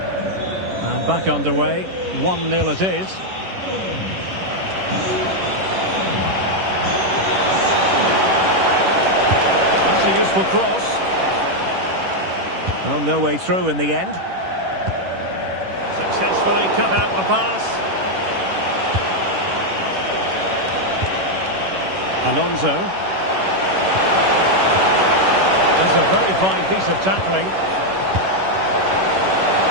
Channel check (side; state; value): left; late; 11 ms